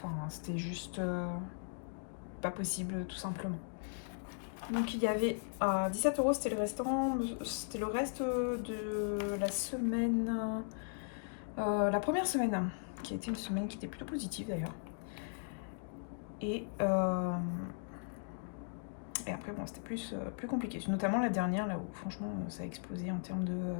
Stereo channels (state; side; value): silent; right; digital silence